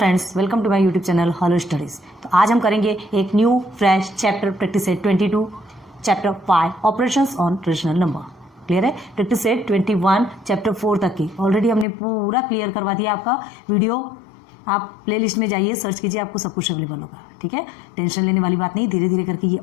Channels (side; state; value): right; drops out; at 11.9 s